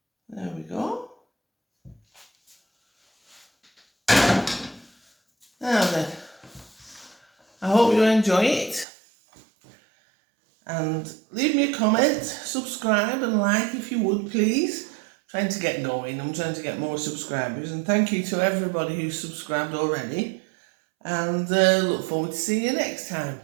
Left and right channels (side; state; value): left; drops out; at 8.8 s